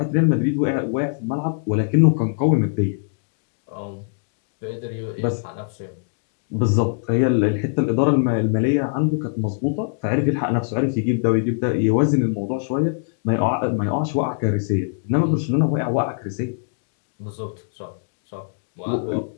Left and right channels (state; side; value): silent; right; digital silence